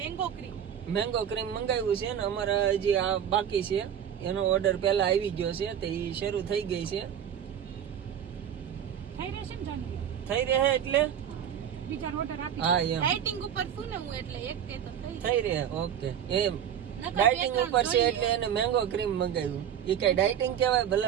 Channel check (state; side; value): quieter; left; 9.2 dB